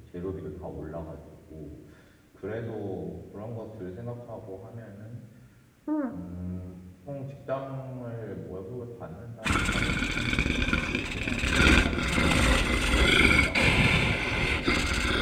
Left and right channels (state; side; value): identical; both; correlation 1.00